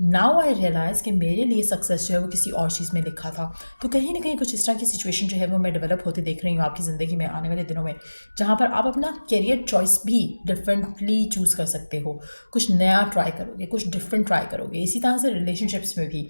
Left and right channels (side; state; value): both; inverted; correlation -1.00